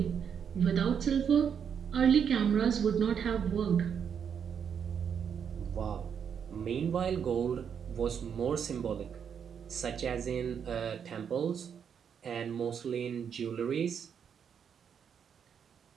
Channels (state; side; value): quieter; left; 7.5 dB